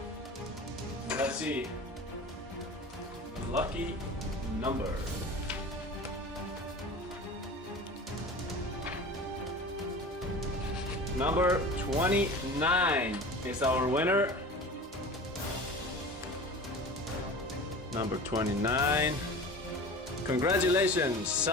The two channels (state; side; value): normal; both; correlation 0.36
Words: And let's see. The lucky number. Number 29 is our winner. Number 29. Congratulations,